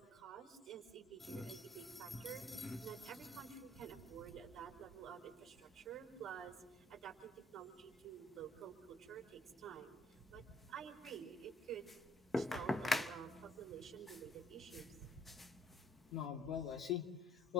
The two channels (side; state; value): both; normal; correlation 0.64